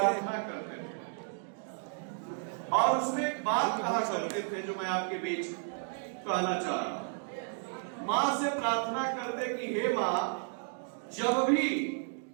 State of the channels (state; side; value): silent; left; 56 dB below the other